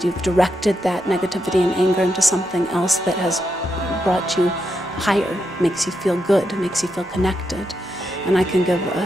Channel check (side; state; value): both; normal; correlation 0.83